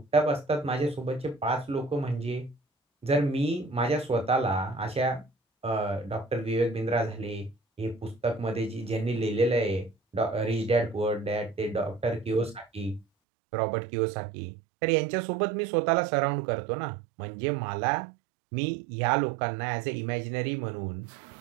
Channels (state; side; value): drops out; left; at 13.1 s